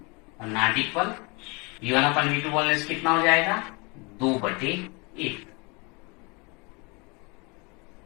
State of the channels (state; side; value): quieter; right; 29.4 dB